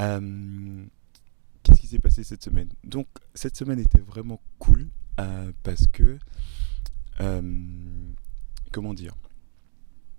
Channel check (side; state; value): left; silent; digital silence